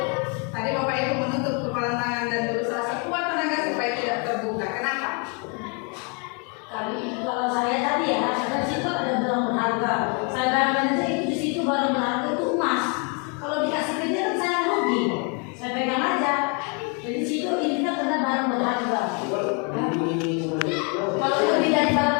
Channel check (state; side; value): quieter; right; 35.8 dB